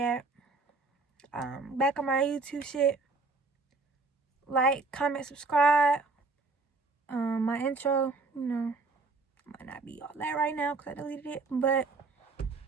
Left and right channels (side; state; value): left; quieter; 3.7 dB